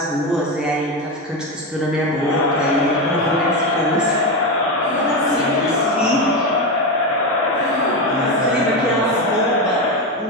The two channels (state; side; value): normal; both; correlation 0.14